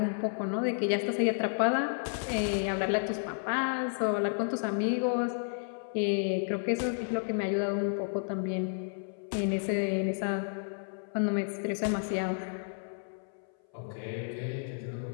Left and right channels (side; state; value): right; silent; 57 dB below the other